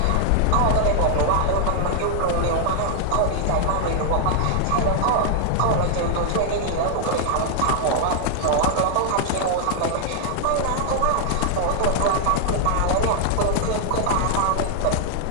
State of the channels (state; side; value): different; both; correlation 0.00